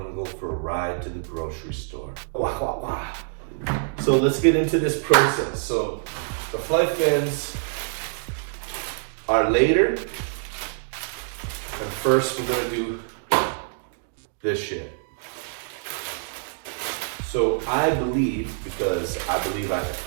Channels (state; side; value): silent; left; digital silence